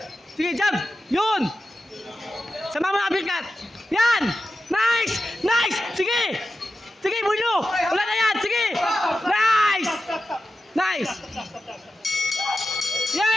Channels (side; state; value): both; normal; correlation 0.92